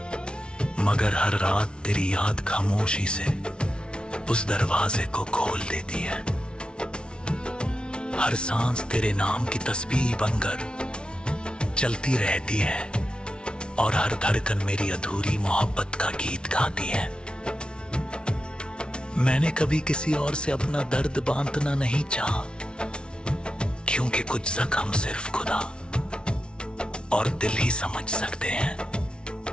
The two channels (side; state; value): right; late; 0.056 ms